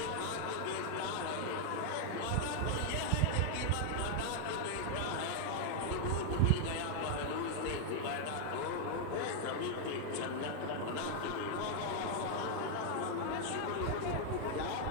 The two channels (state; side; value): different; both; correlation 0.00